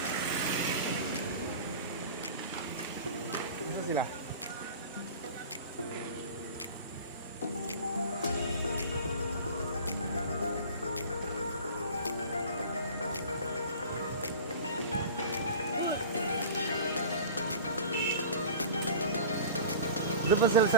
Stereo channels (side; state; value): both; inverted; correlation -0.37